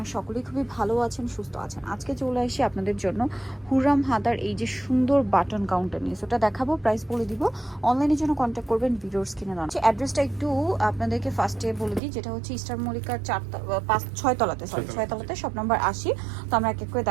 সকলেই খুবই ভালো আছেন, সুস্থ আছেন। আজকে চলে আসি আপনাদের জন্য হুররাম হাতার এই যে সুন্দর বাটন কাউন্টার নিয়ে, ওটা দেখাবো, প্রাইস বলে দিব। অনলাইনের জন্য কন্ট্যাক্ট করবেন, ভিডিওস কিনে দেওয়া। অ্যাড্রেসটা একটু আপনাদেরকে ফার্স্টে বলে দিই, যেটা হচ্ছে ইস্টার মল্লিকার 6 তলাতে শপ নাম্বার 80। তো আমরা এক এক করে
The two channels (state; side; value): drops out; left; at 12.0 s